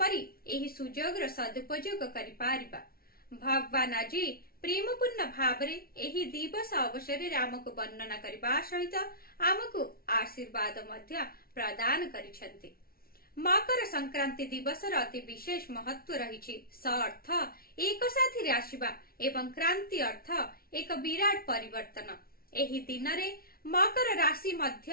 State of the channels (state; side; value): late; right; 0.44 ms